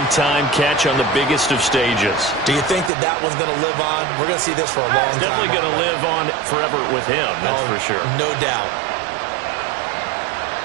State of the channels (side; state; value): left; drops out; at 2.9 s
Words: catch on the biggest of stages. Do you think that that one's going to live on? We're going to see this for a long time. It's definitely going to live on forever with him, that's for sure. No doubt.